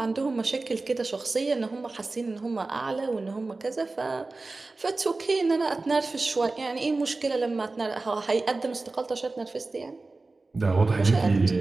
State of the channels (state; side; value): quieter; left; 3.4 dB